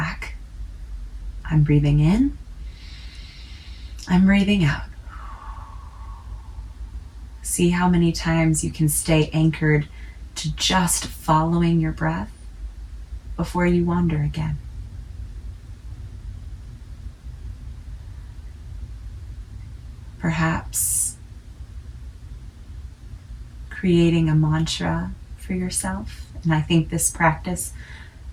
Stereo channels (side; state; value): both; identical; correlation 1.00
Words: I'm breathing in. I'm breathing out. See how many times you can stay anchored to just following your breath before you wander again. Perhaps creating a mantra for yourself. And I think this practice